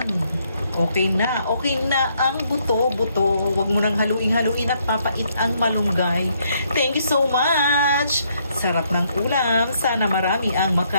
Okay na ang buto-buto. Huwag mo nang haluin at papait ang malunggay. Thank you so much. Sarap ng ulam. Sana marami ang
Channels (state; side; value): inverted; both; correlation -0.71